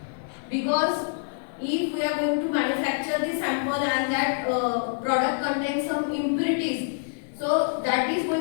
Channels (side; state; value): right; silent; digital silence